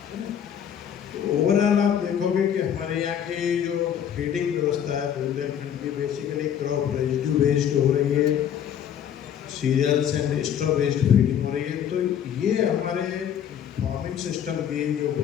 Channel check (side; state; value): right; quieter; 9.2 dB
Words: तो ओवरऑल आप देखोगे पाओगे कि हमारे यहाँ की जो फीडिंग व्यवस्था है बुंदेलखंड की बेसिकली क्रॉप रेजिड्यू बेस्ड हो रही है, cereals and straw based feeding हो रही है। तो ये हमारे फार्मिंग सिस्टम की जो